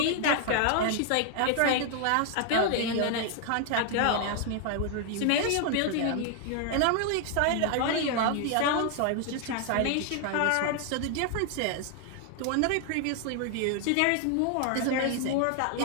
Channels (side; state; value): both; different; correlation 0.00